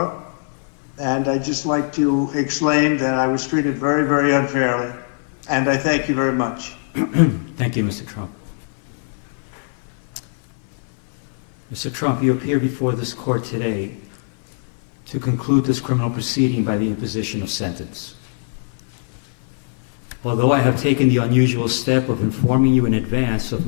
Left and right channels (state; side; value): silent; right; 57 dB below the other